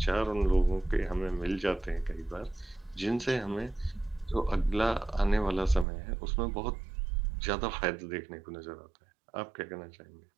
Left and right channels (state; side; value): drops out; left; at 5.9 s